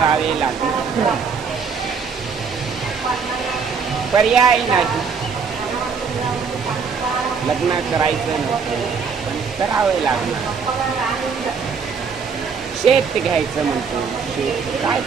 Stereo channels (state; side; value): quieter; left; 5.7 dB